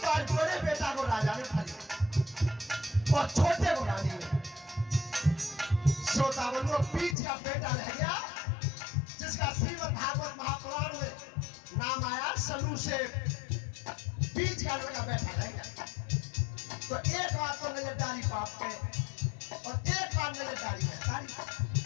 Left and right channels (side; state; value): right; drops out; at 7.2 s